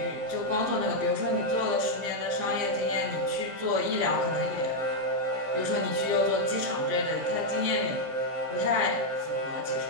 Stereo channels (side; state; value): left; late; 15 ms